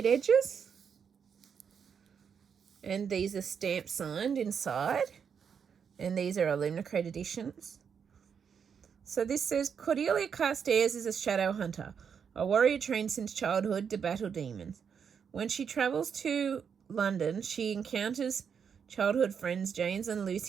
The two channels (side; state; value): left; quieter; 7.0 dB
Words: edges. And these are stamp signed inside. And these are Illumicrate editions. So this says, Cordelia Carstairs is a shadow hunter, a warrior trained since childhood to battle demons. When she travels to London, she encounters childhood friends James and